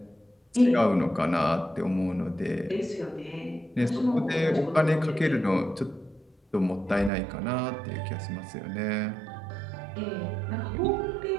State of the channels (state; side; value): drops out; left; at 7.1 s